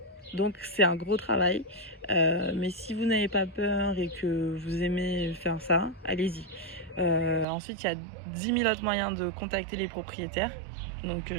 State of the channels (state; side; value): drops out; left; at 7.5 s